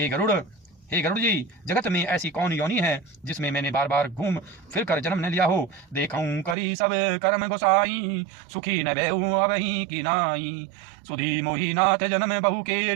गरुड़ जी, जगत में ऐसी कौन योनि है जिसमें मैंने बार बार घूम फिर कर जन्म न लिया हो। देखूं करी सब कर्म गोसाई, सुखी न बेहू अबही की नाई। सुधी मोही नाथ जन्म बहु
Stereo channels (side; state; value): left; drops out; at 6.6 s